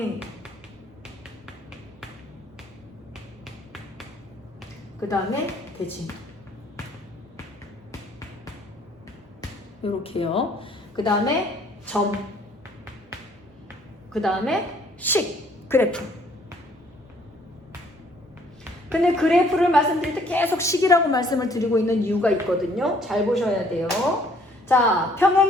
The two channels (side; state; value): both; normal; correlation 0.61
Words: 그 다음에 대칭. 이렇게요. 그 다음에 점. 그 다음에 식, 그래프. 근데 그래프를 말씀드릴 때 계속 식이라고 말씀을 드리고 있는 이유가 있거든요. 잘 보셔야 돼요. 자,